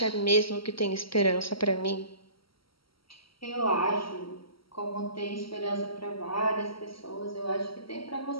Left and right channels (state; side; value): late; right; 0.75 ms